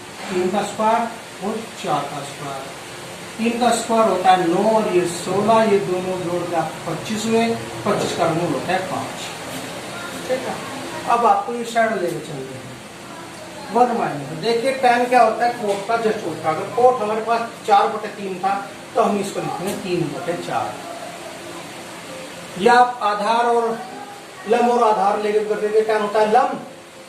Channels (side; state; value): both; identical; correlation 1.00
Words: 3 का स्क्वायर और 4 का स्क्वायर। 3 का स्क्वायर होता है 9 और ये 16, ये दोनों जोड़ के आपको 25 हुए। 25 का मूल होता है 5। ठीक है, अब आपको ये साइड लेके चलते हैं 1 माइनस। देखिए tan क्या होता है, कोट का जस्ट उल्टा। अगर कोट हमारे पास 4/3 था तो हम इसको लिखेंगे 3/4। या आप आधार और लंब और आधार लेके करके tan होता है लंब